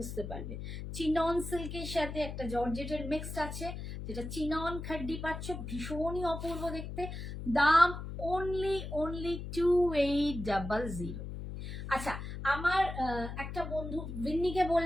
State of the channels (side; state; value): left; noise; hum, 7 dB below the sound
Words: পারবে। চিনন সিল্কের সাথে একটা জর্জেটের মিক্সড আছে, যেটা চিনন খাড্ডি পাচ্ছ, ভীষণই অপূর্ব দেখতে। দাম অনলি 2800। আচ্ছা, আমার একটা বন্ধু ভিন্নিকে